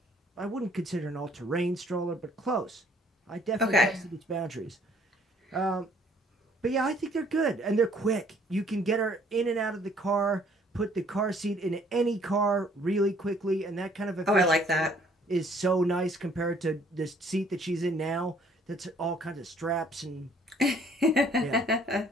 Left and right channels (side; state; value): both; normal; correlation 0.60